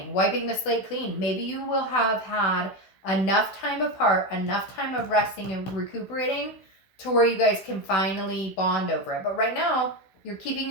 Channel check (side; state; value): right; late; 16 ms